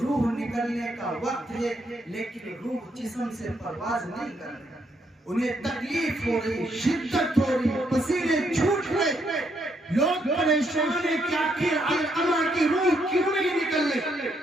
نکلنے کا وقت ہے لیکن روح جسم سے پرواز نہیں کر رہی، انہیں تکلیف ہو رہی، شدت ہو رہی، پسینے چھوٹ رہے، لوگ پریشان ہیں کہ آخر علقمہ کی روح کیوں نہیں نکل رہی،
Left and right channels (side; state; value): both; normal; correlation 0.75